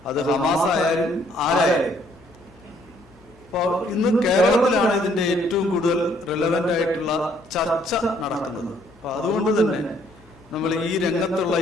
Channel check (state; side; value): noise; left; hum, 28 dB below the sound